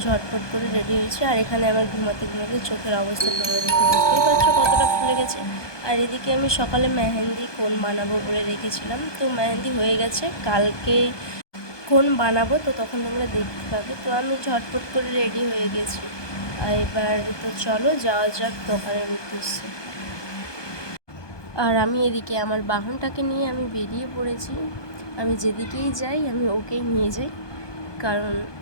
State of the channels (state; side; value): late; right; 1.2 ms